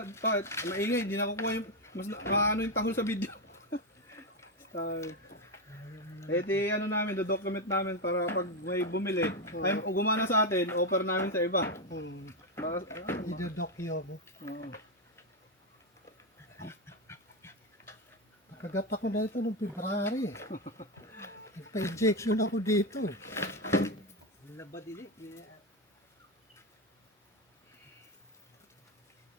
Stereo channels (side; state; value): both; normal; correlation 0.08